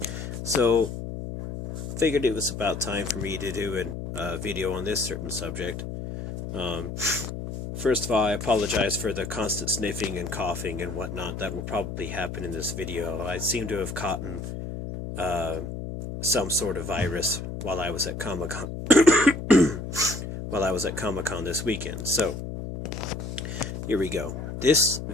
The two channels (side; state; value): left; noise; hum, 7 dB below the sound